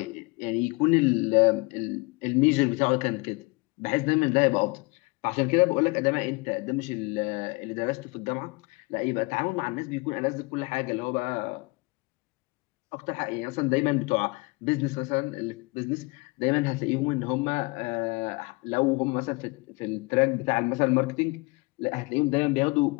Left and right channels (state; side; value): quieter; right; 26.8 dB